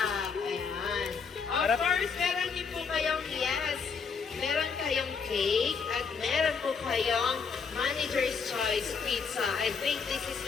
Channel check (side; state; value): right; quieter; 5.6 dB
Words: Ayan. Of Harap. course, meron din po kayong yes. Meron kayong cake at meron po kayong Manager's Choice Pizza. I think this is